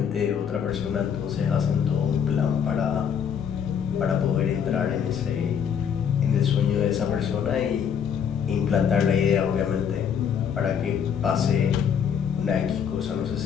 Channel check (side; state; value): right; quieter; 7.7 dB